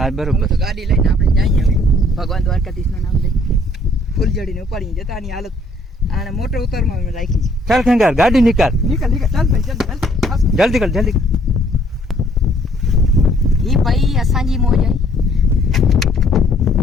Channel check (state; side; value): normal; both; correlation 0.62